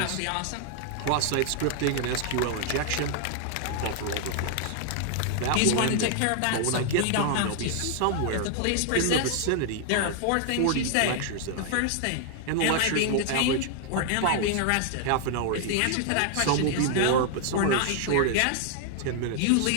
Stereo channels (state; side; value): different; both; correlation 0.00